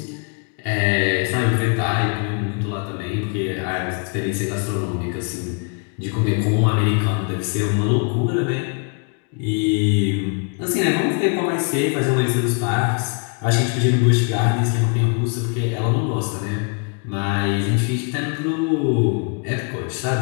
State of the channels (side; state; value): right; quieter; 37.5 dB